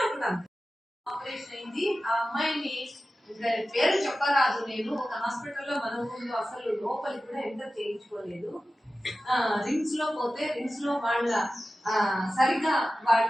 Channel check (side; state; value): both; normal; correlation 0.95